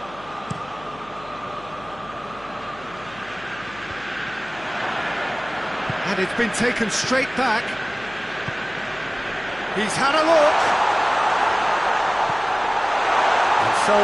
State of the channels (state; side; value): noise; left; hum, 21 dB below the sound